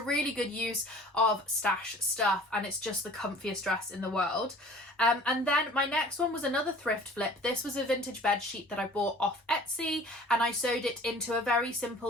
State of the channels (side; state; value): both; normal; correlation 0.48